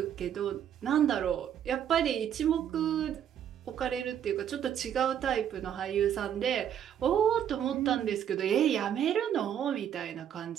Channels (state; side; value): quieter; left; 9.5 dB